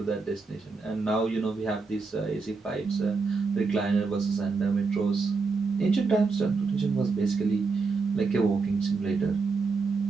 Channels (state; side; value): quieter; left; 4.3 dB